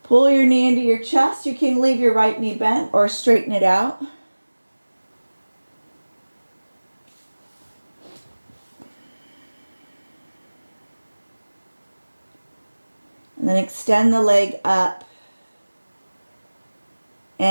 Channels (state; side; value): inverted; both; correlation -1.00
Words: Pull your knee into your chest. You can leave your right knee bent or straighten it out. And then extend the leg up